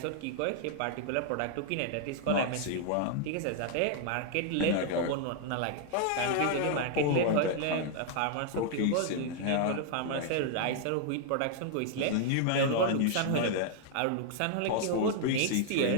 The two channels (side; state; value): both; different; correlation 0.00